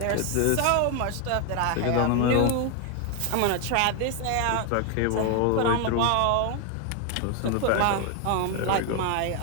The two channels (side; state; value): both; different; correlation 0.01